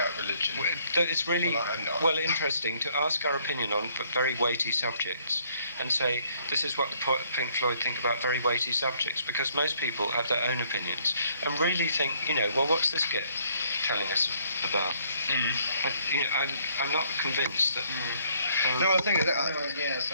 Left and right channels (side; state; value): both; inverted; correlation -0.65